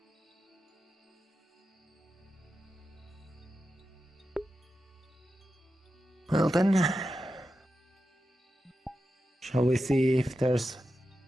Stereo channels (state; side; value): normal; both; correlation 0.90